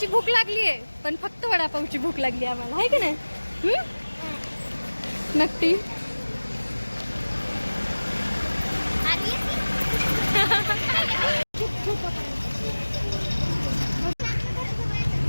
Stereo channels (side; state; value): both; inverted; correlation -1.00